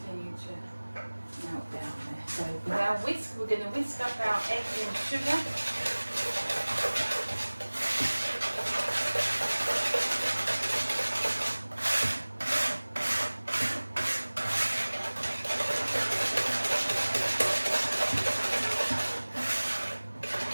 to melt down there. So with our whisk, we're going to whisk up our eggs and sugar.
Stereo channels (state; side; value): inverted; both; correlation -1.00